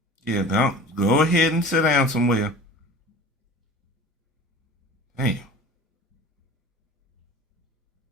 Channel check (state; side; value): normal; both; correlation 0.40